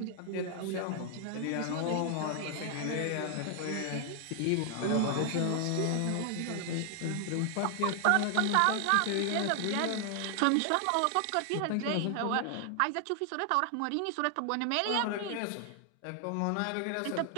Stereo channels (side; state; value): both; different; correlation 0.00